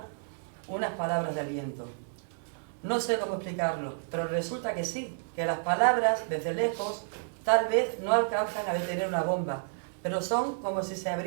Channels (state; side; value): silent; left; digital silence